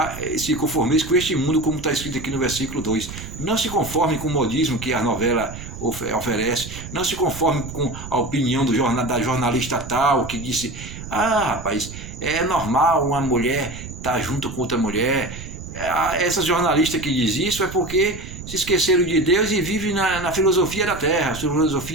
se conformeis com este mundo, como está escrito aqui no versículo 2. Não se conforme com o modismo que a novela oferece, não se conforme com a opinião da jornalista tal, que disse, rapaz, é normal uma mulher estar junto com outra mulher. Essa jornalista que diz isso é porque se esqueceram de Deus e vivem na filosofia da terra,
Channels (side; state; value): right; noise; rumble, 11 dB below the sound